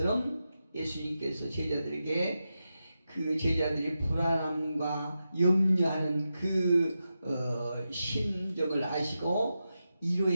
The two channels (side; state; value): both; inverted; correlation -0.90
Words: 예수님께서 제자들에게 제자들이 불안함과 염려하는 심정을 아시고